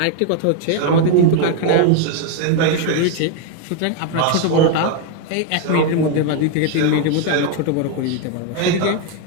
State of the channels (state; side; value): different; both; correlation 0.01